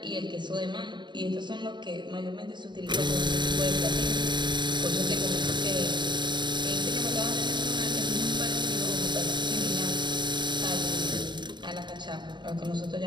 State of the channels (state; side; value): late; left; 0.22 ms